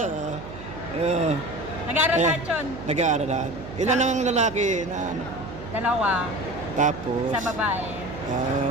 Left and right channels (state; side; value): noise; right; hum, 13 dB below the sound